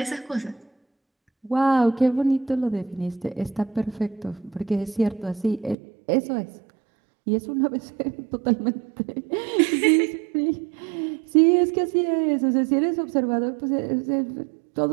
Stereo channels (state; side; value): drops out; left; at 5.8 s